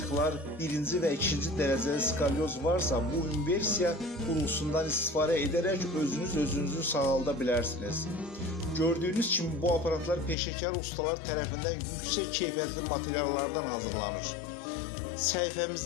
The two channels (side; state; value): right; drops out; at 10.4 s